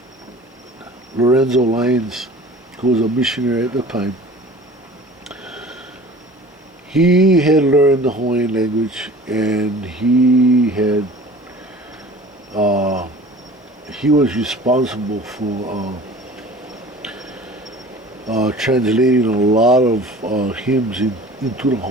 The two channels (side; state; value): both; normal; correlation 0.44